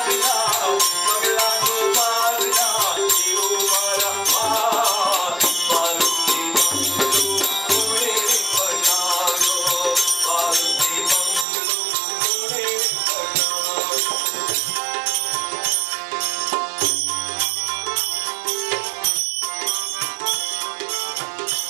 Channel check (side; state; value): left; drops out; at 11.5 s